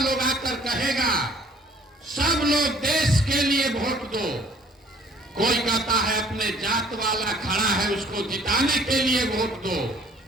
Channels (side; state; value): both; normal; correlation 0.57